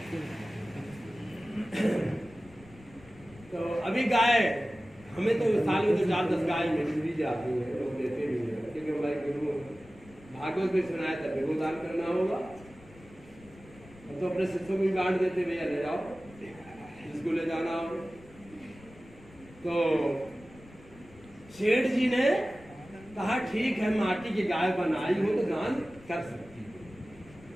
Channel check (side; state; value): left; noise; rumble, 22 dB below the sound